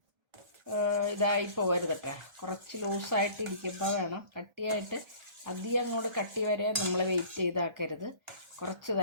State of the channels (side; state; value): left; late; 1.3 ms